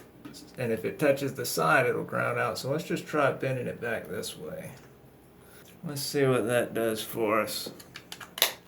And if it touches the side, it'll ground out. So let's just try bending it back this way. Let's see what that does for us.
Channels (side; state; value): both; identical; correlation 1.00